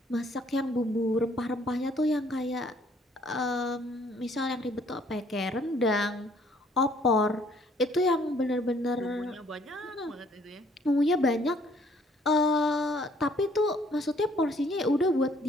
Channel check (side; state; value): both; normal; correlation 0.62